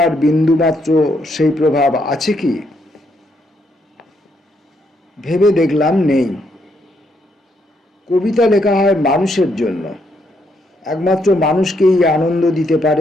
বিন্দুমাত্র সেই প্রভাব আছে কি? ভেবে দেখলাম নেই। কবিতা লেখা হয় মানুষের জন্য, একমাত্র মানুষকেই আনন্দ দিতে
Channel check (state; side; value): normal; both; correlation 0.75